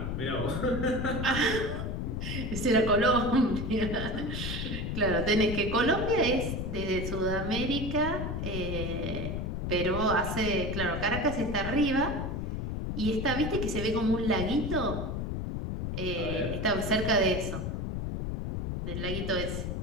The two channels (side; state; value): left; noise; rumble, 3 dB below the sound